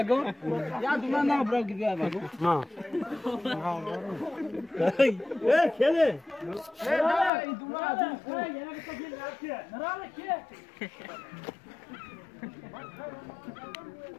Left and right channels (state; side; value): drops out; right; at 7.3 s